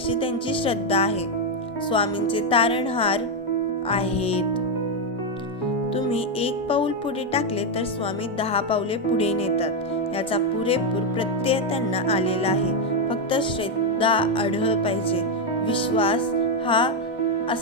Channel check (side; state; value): both; normal; correlation 0.03